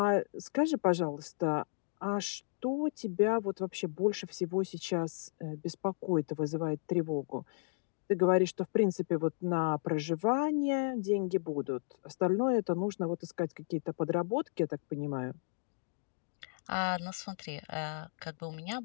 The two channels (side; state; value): right; silent; digital silence